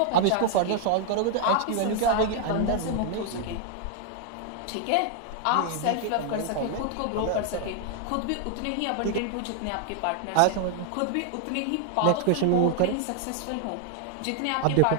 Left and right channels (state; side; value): different; both; correlation 0.00